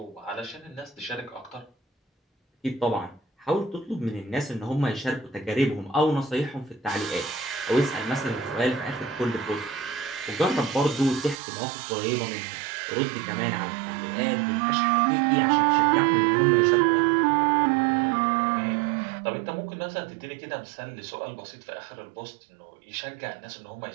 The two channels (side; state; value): left; drops out; at 11.4 s